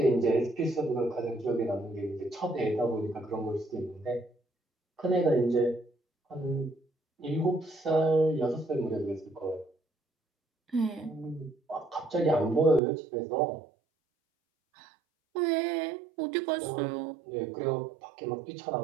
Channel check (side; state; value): left; drops out; at 12.8 s